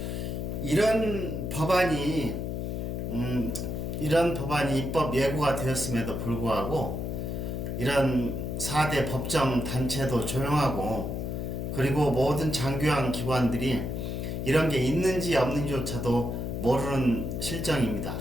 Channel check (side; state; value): left; noise; hum, 3 dB below the sound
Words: 이런 법안이 입법 예고가 되었음에도 불구하고 이런 4대 법정 단체도 조용하고, 그리고 모든 장교양 기관들이 이런 게 있는지 없는지조차도 모르는 실정입니다.